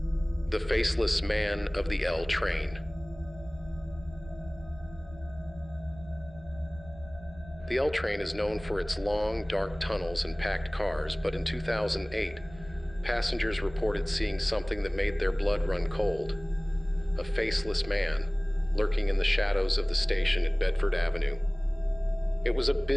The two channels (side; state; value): right; noise; rumble, 19 dB below the sound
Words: The Faceless Man of the L Train. The L train is known for its long, dark tunnels and packed cars, but in 2008, passengers reported seeing something that made their blood run cold. A faceless man lurking in the shadows of the station at Bedford Avenue. It was a